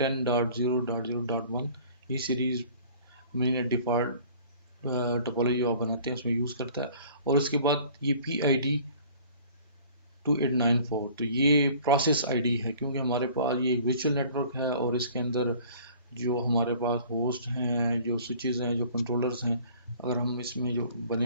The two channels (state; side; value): inverted; both; correlation -0.50